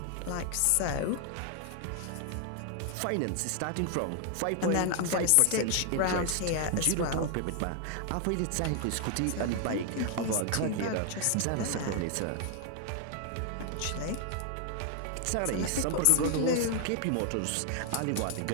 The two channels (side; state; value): both; different; correlation 0.00